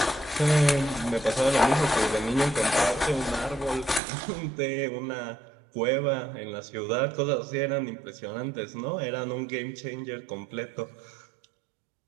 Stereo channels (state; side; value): drops out; left; at 4.0 s